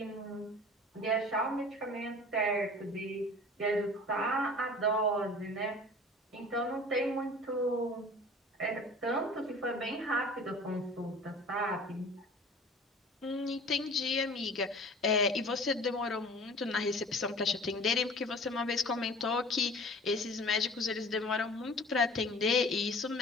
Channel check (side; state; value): both; normal; correlation 0.44